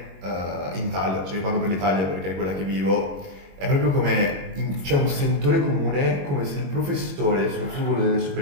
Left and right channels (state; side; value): late; left; 21 ms